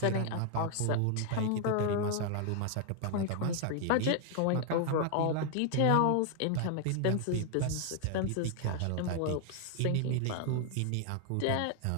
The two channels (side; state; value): both; different; correlation 0.00